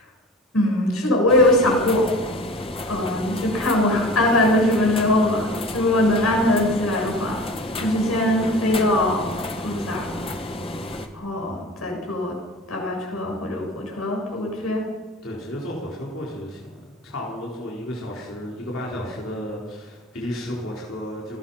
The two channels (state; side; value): normal; both; correlation 0.38